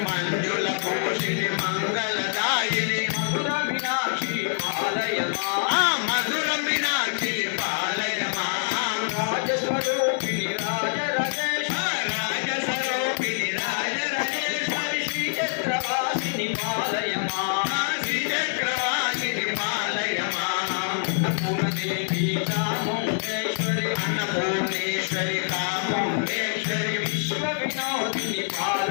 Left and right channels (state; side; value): silent; right; digital silence